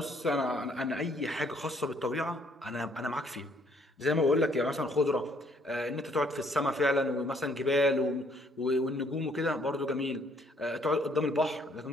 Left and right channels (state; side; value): normal; both; correlation 0.65